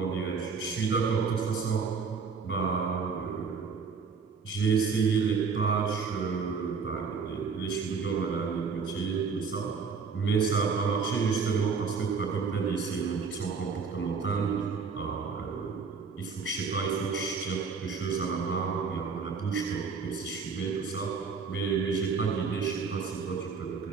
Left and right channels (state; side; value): quieter; left; 5.4 dB